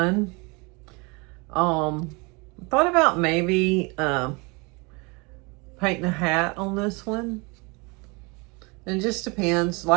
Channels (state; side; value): quieter; left; 28.5 dB